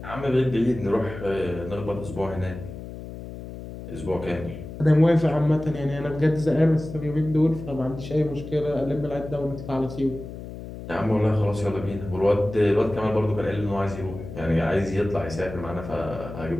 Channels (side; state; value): left; noise; hum, 11 dB below the sound